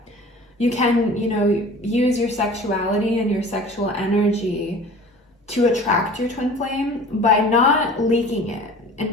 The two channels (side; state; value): both; normal; correlation 0.43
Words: you can, use your sexuality and your sexual energy to attract your twin flame by not leaking it,